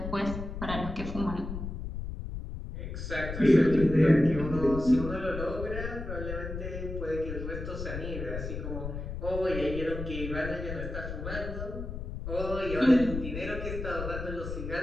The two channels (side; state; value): left; noise; rumble, 6 dB below the sound